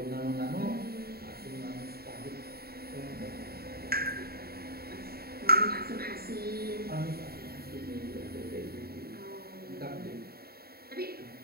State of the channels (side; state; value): left; late; 0.45 ms